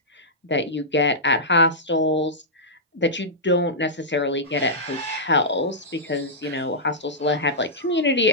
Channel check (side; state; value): both; normal; correlation -0.12